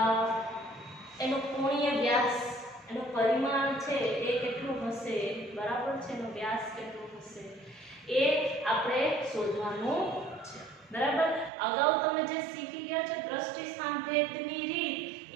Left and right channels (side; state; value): left; drops out; at 11.5 s